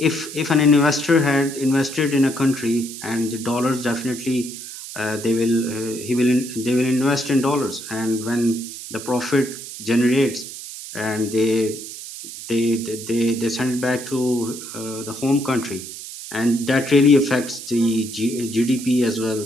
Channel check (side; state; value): right; noise; hiss, 11 dB below the sound